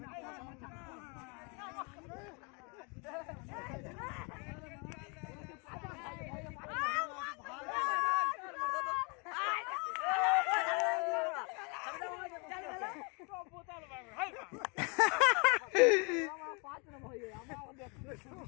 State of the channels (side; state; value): right; quieter; 33.1 dB